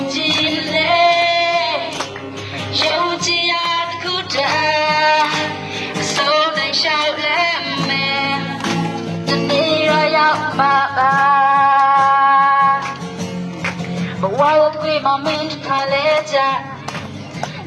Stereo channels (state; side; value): identical; both; correlation 1.00